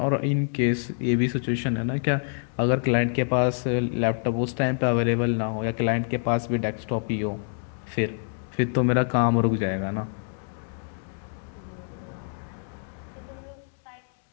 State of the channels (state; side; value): silent; right; 60 dB below the other